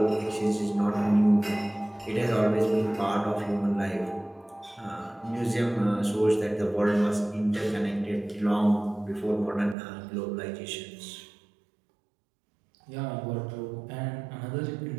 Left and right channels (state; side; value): drops out; left; at 9.8 s